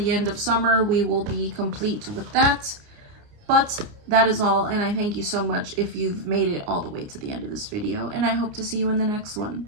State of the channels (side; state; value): left; late; 29 ms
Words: end of summer we will be complete with that. But that is all, and I thank you so much if you've made it all the way to the end of this video, and I hope to see you in the next one.